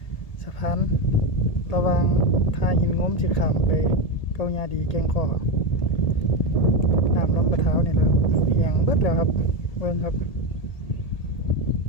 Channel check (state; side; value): late; right; 1.7 ms